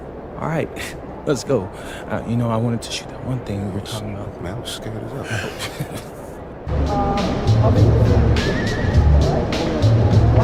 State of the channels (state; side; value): identical; both; correlation 1.00